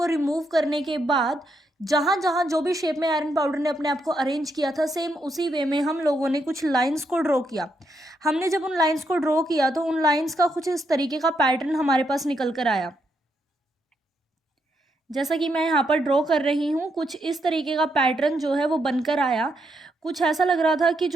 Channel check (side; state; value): both; normal; correlation 0.79